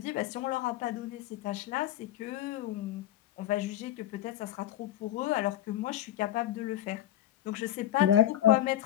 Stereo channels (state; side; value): quieter; right; 12.6 dB